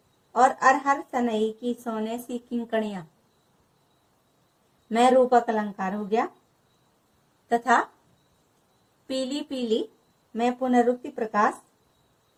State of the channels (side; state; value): both; identical; correlation 1.00